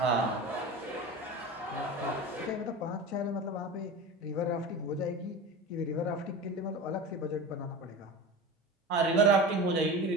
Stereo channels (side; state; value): both; normal; correlation 0.30